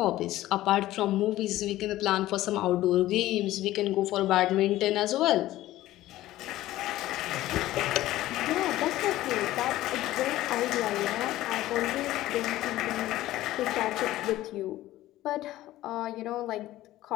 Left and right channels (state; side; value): quieter; right; 15.5 dB